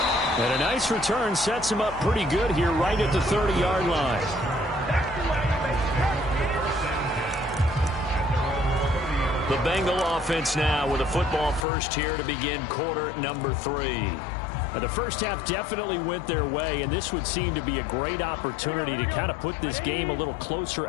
And a nice return sets him up pretty good here right at the 30-yard line. The Bengal offense now with a football first here to begin quarter number 3. The first half definitely went their way, and this would seem to be a great opportunity to kind of put this game a little closer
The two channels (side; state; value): right; drops out; at 11.7 s